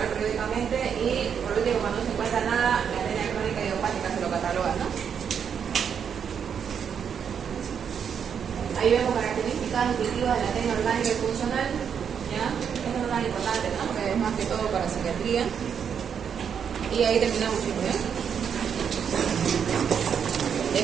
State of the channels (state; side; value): quieter; left; 7.5 dB